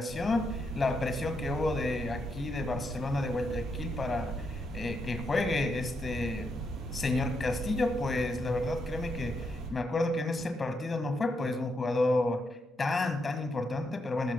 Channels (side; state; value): both; normal; correlation 0.80